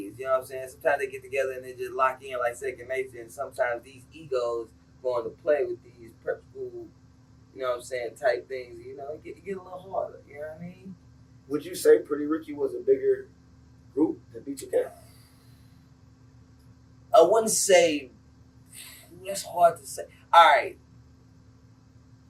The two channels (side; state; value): both; identical; correlation 1.00